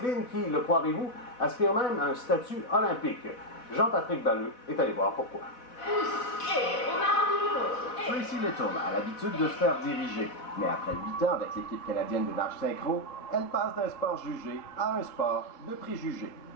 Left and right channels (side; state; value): right; late; 4.1 ms